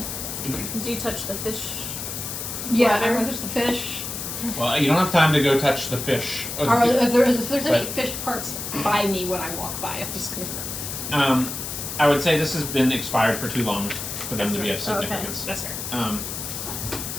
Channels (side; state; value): left; noise; hiss, 6 dB below the sound